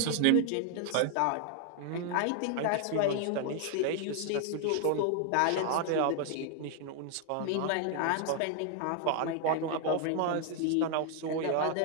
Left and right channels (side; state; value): both; different; correlation 0.00